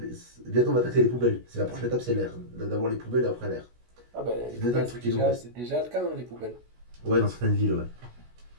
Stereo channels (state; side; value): late; left; 16 ms